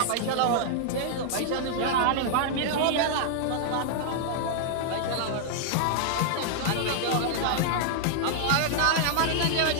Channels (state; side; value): different; both; correlation -0.01